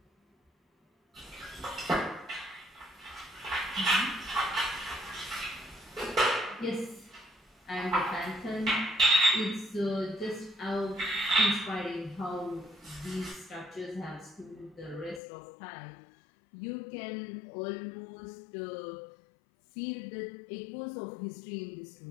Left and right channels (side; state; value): right; drops out; at 15.2 s